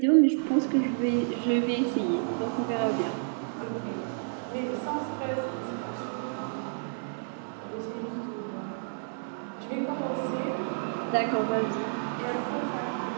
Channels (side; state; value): left; silent; digital silence